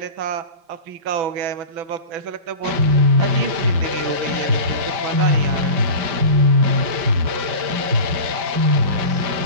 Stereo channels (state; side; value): late; left; 5.1 ms